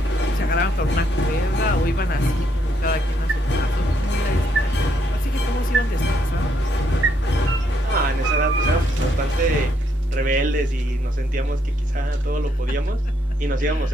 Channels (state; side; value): normal; both; correlation 0.74